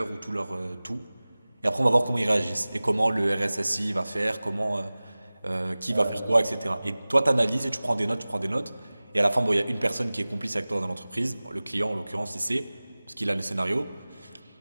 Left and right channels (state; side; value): inverted; both; correlation -0.99